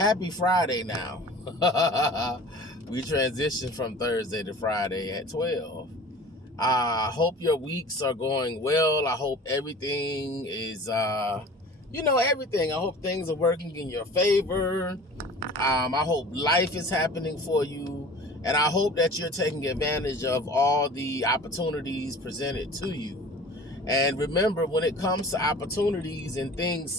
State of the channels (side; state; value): both; normal; correlation 0.42